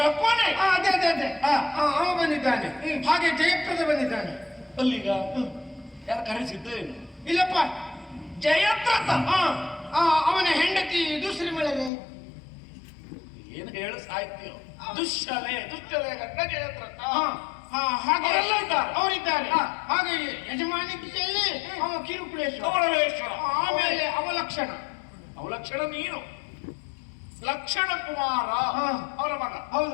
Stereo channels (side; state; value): right; drops out; at 11.9 s